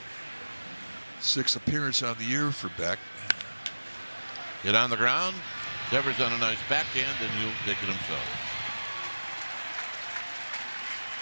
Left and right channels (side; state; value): both; inverted; correlation -1.00